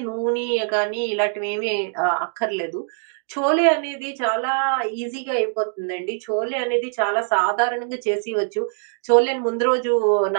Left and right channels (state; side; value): silent; left; digital silence